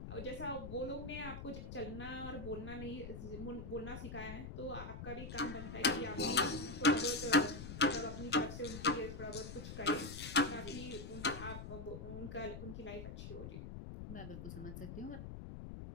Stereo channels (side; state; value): left; noise; rumble, 8 dB below the sound